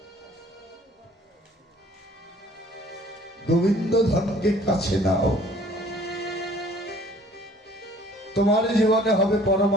গোবিন্দ ধনকে কাছে নাও, তোমার জীবনে হবে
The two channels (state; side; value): normal; both; correlation 0.54